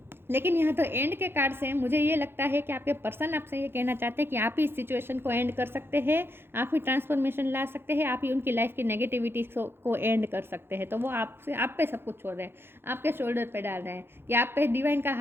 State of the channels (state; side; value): late; left; 0.11 ms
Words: लेकिन यहाँ तो एंड के कार्ड से मुझे ये लगता है कि आपके पर्सन आपसे ये कहना चाहते हैं कि आप ही इस सिचुएशन को एंड कर सकते हैं, आप ही ट्रांसफॉर्मेशन ला सकते हैं, आप ही उनकी लाइफ की नेगेटिविटी को एंड कर सकते हैं। तो वो आपसे, आप पे सब कुछ छोड़ रहे हैं, आपके शोल्डर पे डाल रहे हैं कि आप पे डिवाइन का